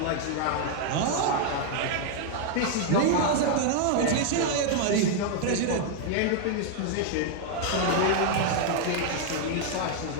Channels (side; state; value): both; different; correlation 0.00